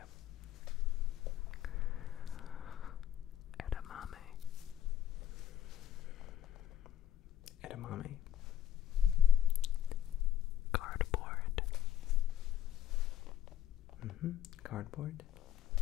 Edamame. Edamame. Cardboard. Cardboard.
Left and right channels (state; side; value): quieter; right; 11.1 dB